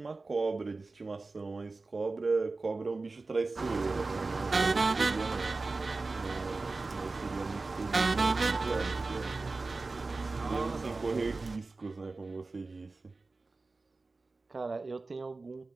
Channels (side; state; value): left; quieter; 3.6 dB